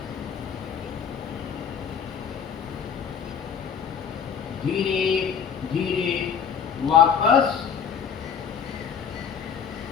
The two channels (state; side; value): quieter; right; 7.3 dB